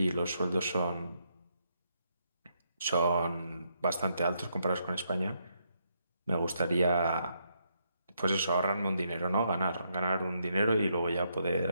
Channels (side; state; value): both; inverted; correlation -0.77